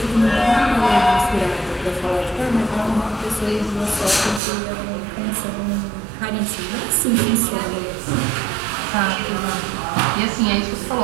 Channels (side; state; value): left; drops out; at 4.4 s